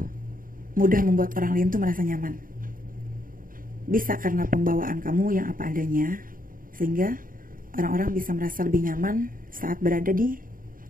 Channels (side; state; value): left; late; 0.41 ms